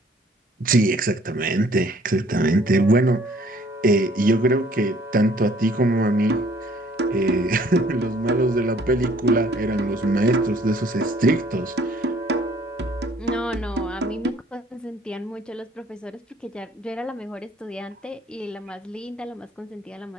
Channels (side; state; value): both; normal; correlation 0.59